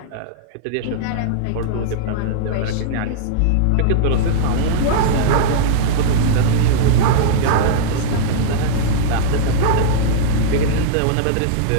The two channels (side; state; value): both; different; correlation -0.02